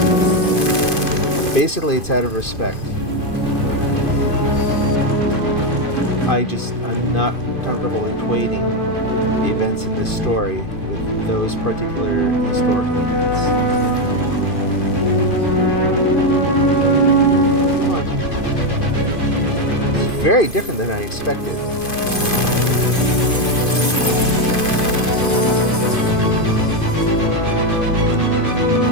Basically, it's out of respect. I'm not comfortable equating the events in this story with those particular historical events. Come on. This is very different than I expected.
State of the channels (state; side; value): late; right; 2.5 ms